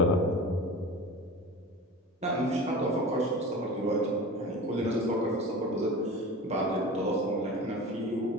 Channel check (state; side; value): normal; both; correlation 0.34